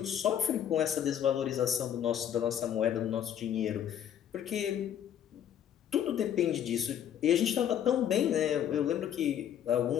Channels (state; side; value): quieter; right; 9.7 dB